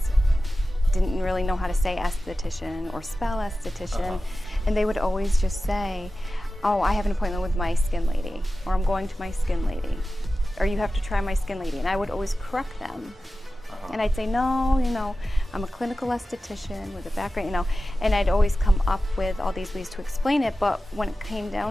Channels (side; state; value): both; normal; correlation 0.94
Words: didn't really know how to say esthetician or spell esthetician. And they would always just say, oh, I have an appointment with my skin lady, or I'm going to my skin lady, or you have to try my skin lady. And I would always correct them. And I'd say, no, I'm a clinical esthetician with a background, and I'd always come up with all these ways to explain it. But when it came